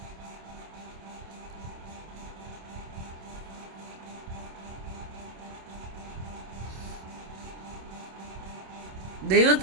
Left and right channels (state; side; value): late; left; 27 ms